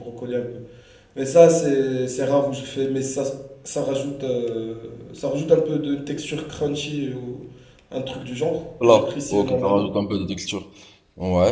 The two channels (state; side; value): identical; both; correlation 1.00